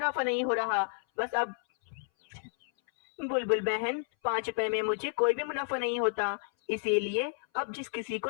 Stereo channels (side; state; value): right; silent; 57 dB below the other